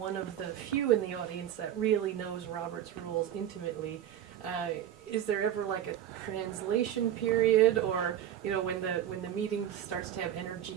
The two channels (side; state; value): left; quieter; 10.8 dB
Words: of the few in the audience that really knows Robert's rules intimately, is there ever like a translation period, or when the meeting starts to have